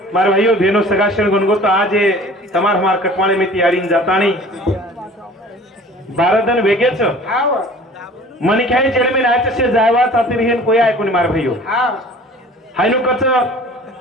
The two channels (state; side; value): normal; both; correlation 0.46